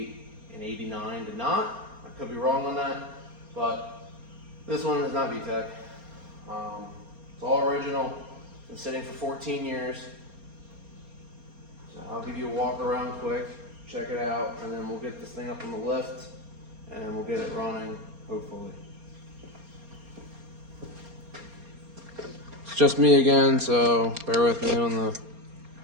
and 89 did not. I could be wrong on that, but this one is not VTEC. It's all original. Been sitting for 14 years. So I'll give you a walk around quick, check it out, and then we'll get this thing up on the lift and we'll get it running, hopefully. It's just me again, so bear with me on the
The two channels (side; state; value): left; late; 4.3 ms